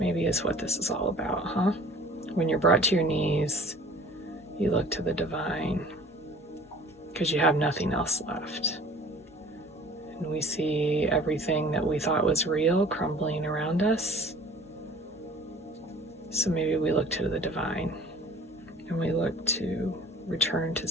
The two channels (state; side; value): normal; both; correlation 0.48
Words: is what this is all about, huh? When you're brought to your knees, you look to the divine because you have nothing else left. And we see everything that we thought was real crumbling around us. So maybe we look to the divine and we look to return to